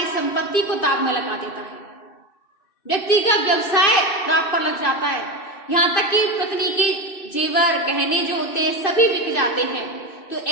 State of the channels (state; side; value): late; right; 2.5 ms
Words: संपत्ति को दांव में लगा देता है। व्यक्ति का व्यवसाय दांव पर लग जाता है, यहाँ तक कि पत्नी के जेवर गहने जो होते हैं सभी बिक जाते हैं। तो